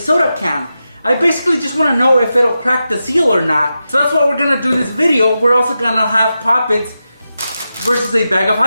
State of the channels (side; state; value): both; inverted; correlation -0.90